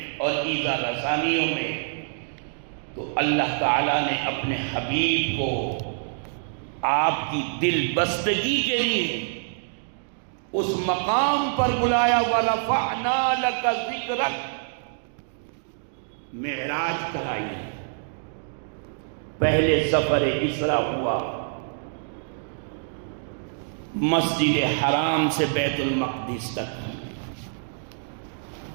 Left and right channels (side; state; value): left; silent; digital silence